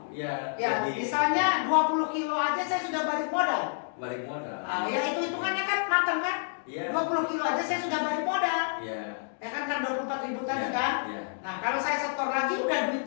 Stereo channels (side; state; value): right; silent; digital silence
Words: Misalnya 20 kilo aja saya sudah balik modal. Ya itu hitungannya kan matang kan? 20 kilo aja saya sudah balik modal. Ya kan 24.000 tadi kan? Nah kalau saya setor lagi udah duit